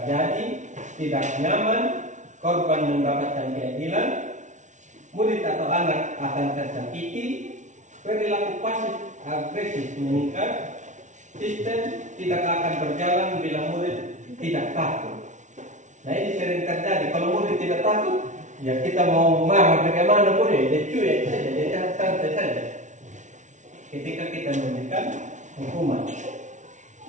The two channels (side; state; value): left; late; 0.36 ms